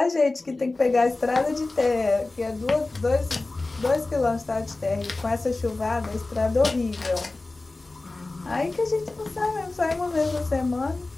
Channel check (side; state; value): right; quieter; 3.2 dB